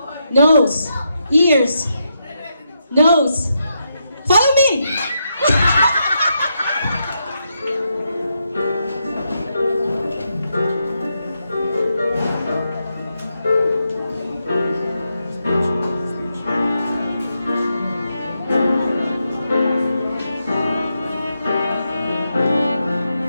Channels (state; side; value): inverted; both; correlation -0.83